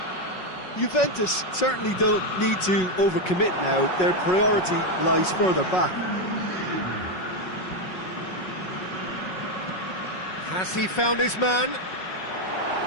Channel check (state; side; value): late; right; 5.4 ms